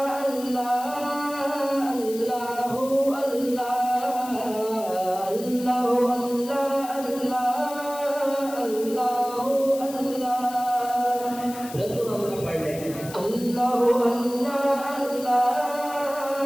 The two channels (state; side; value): noise; left; hiss, 15 dB below the sound